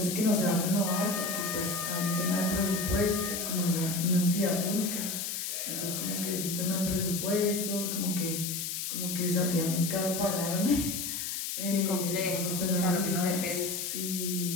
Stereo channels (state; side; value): noise; left; hiss, 3 dB below the sound